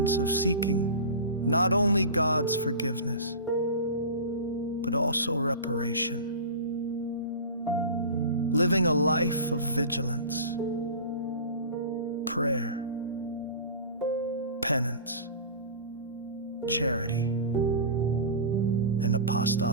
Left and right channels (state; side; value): inverted; both; correlation -0.33